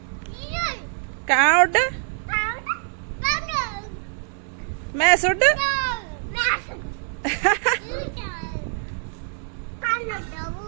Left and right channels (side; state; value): left; silent; digital silence